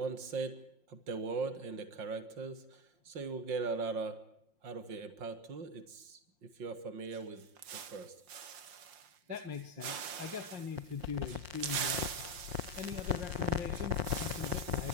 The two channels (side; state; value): left; late; 5.7 ms